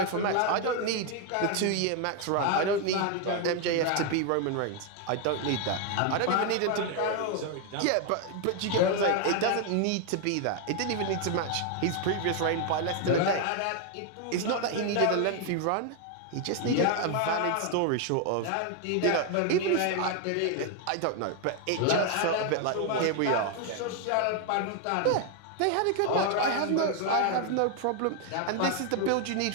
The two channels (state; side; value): different; both; correlation 0.01